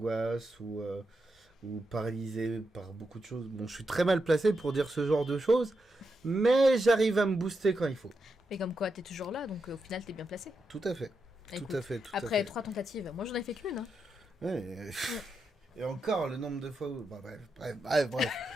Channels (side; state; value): both; normal; correlation 0.85